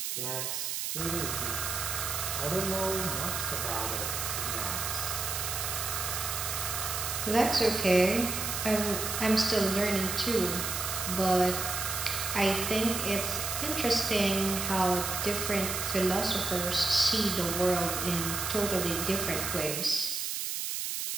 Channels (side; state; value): right; noise; hiss, 2 dB below the sound